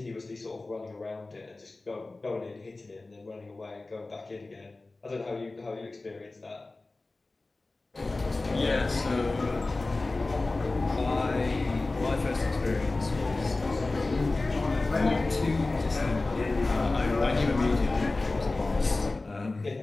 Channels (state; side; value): quieter; right; 3.2 dB